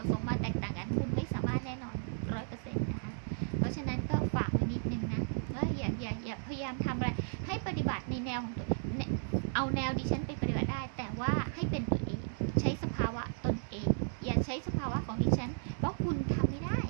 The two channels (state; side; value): silent; left; digital silence